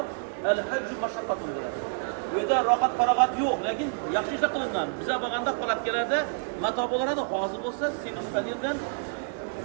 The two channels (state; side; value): silent; left; digital silence